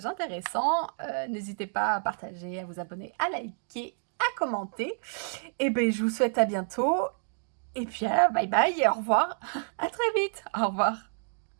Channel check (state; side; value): silent; left; digital silence